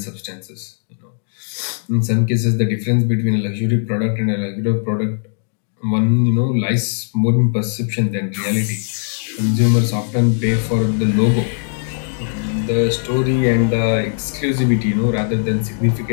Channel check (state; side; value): silent; right; digital silence